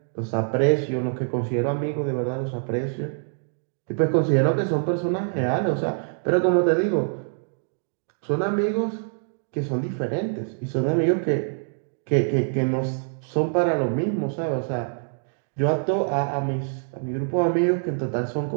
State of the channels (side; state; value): left; silent; 60 dB below the other